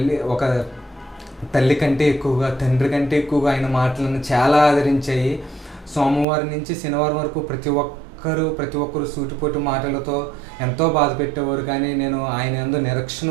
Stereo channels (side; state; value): left; drops out; at 6.2 s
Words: తల్లి కంటే ఎక్కువగా, తండ్రి కంటే ఎక్కువగా ఆయన మాటలను చాలా ఆదరించాయి. సోమవారం నుంచి శనివారం వరకు ప్రతి ఒక్కరు సూటిపోటు మాటలతో ఎంతో బాధ పెట్టేవారు. కానీ నేను ఆయన యందు నిరీక్షణ